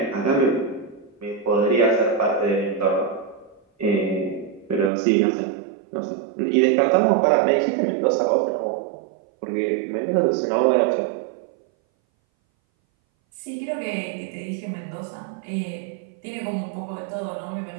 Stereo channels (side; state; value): left; drops out; at 4.9 s